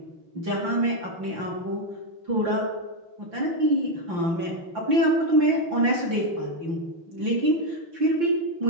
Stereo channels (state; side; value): late; left; 5.8 ms